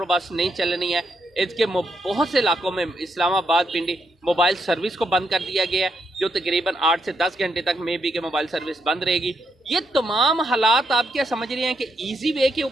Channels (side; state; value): both; normal; correlation 0.79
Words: بس نہیں چلنی ہے۔ اس کے بہت سے علاقوں میں اسلام آباد پنڈی موبائل سروس کو بند کر دیا گیا ہے، جو تقریباً 8 سے 10 گھنٹے تک میں بھی کہ موبائل سروس بند رہے گی۔ یہ تمام حالات آپ کیا سمجھ رہے ہیں کہ ایزی وے کے